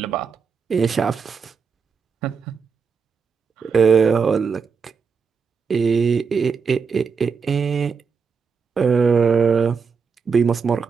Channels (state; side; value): quieter; left; 5.7 dB